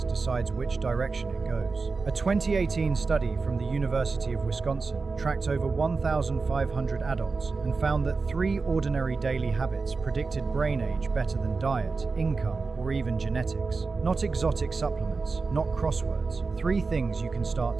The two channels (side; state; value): left; quieter; 4.3 dB